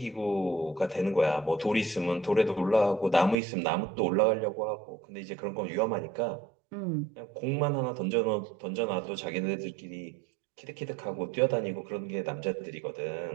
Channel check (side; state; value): left; drops out; at 3.4 s